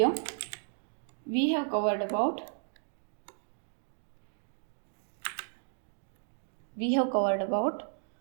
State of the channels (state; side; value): silent; left; digital silence